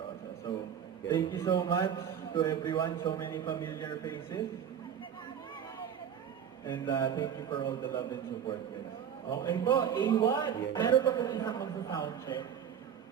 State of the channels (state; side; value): quieter; left; 8.7 dB